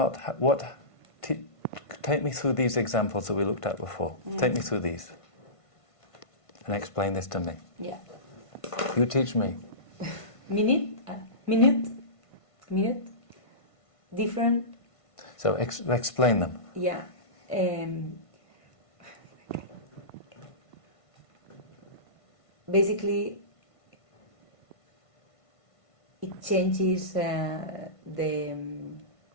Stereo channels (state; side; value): late; right; 1.5 ms